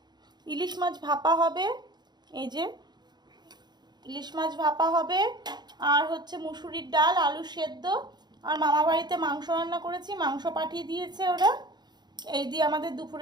মাছ ভাপা হবে। এই যে ইলিশ মাছ ভাপা হবে, আর হচ্ছে মুসুরির ডাল, আলু সেদ্ধ, আর মামা বাড়িতে মাংস রান্না করেছি, মাংস পাঠিয়ে দিয়েছে ওরা। এই দিয়ে আমাদের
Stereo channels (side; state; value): left; late; 0.21 ms